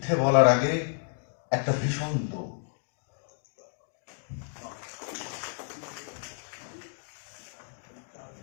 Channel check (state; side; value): silent; right; digital silence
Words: বলার আগে একটা ভীষণ দৌড়।